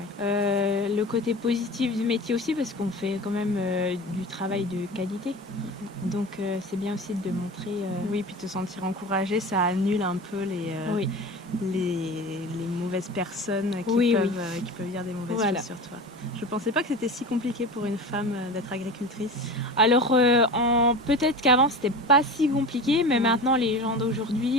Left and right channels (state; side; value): normal; both; correlation 0.33